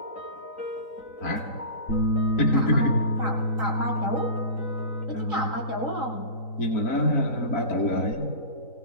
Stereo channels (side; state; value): right; late; 3.9 ms